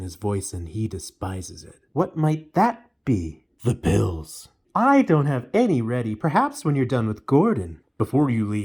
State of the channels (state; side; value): identical; both; correlation 1.00